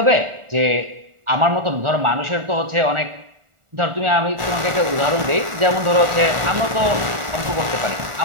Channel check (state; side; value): late; left; 1.4 ms